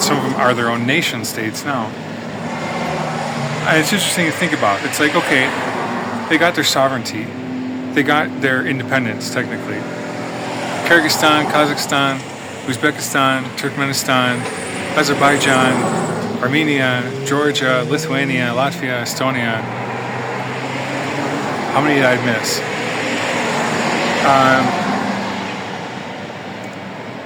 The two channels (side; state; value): both; identical; correlation 1.00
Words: are their own nation states now. And it's interesting to think about. It's like, okay, they got their sovereignty. They got their independence, technically. Kyrgyzstan, Kazakhstan, Uzbekistan, Turkmenistan, Azerbaijan, Armenia, Georgia, Lithuania, Latvia, Estonia. How many did I miss?